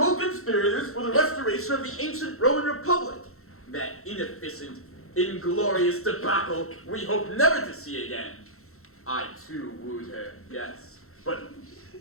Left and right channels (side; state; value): right; late; 0.63 ms